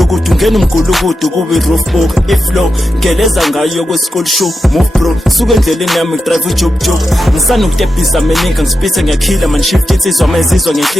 ngena umgulukudu kubi roof book iflow geleza ngayo kwe school show move bro suka endleleni yami drive ujob ngisana ukutebhisa meninga ngisipithe ngiyakhila man shift insizwa mayizizwa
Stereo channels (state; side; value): normal; both; correlation 0.89